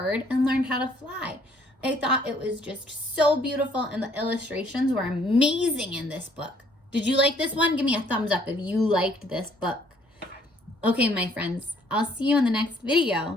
and learned how to fly. I thought it was just so beautiful and the illustrations were amazing in this book. Did you like this one? Give me a thumbs up if you liked this book. Okay, my friends, I'll see you in the next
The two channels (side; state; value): both; normal; correlation 0.63